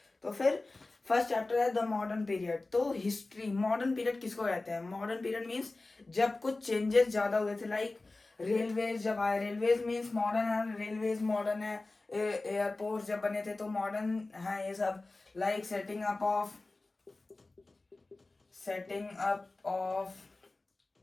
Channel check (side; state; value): right; quieter; 3.2 dB